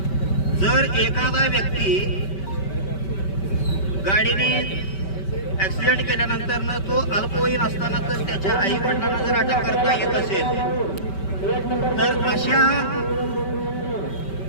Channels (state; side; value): late; right; 5.2 ms